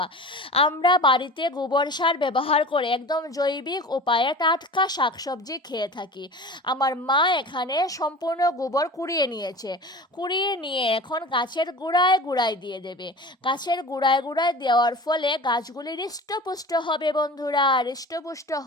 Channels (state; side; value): normal; both; correlation 0.37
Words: আমরা বাড়িতে গোবর সার ব্যবহার করে একদম জৈবিক উপায়ে টাটকা শাকসবজি খেয়ে থাকি। আমার মা মা এখানে সম্পূর্ণ গোবর কুড়িয়ে নিয়েছে। কুড়িয়ে নিয়ে এখন গাছের গোড়ায় গোড়ায় দিয়ে দেবে। গাছের গোড়ায় গোড়ায় দেওয়ার ফলে গাছগুলি হৃষ্টপুষ্ট হবে বন্ধুরা। হৃষ্টপুষ্ট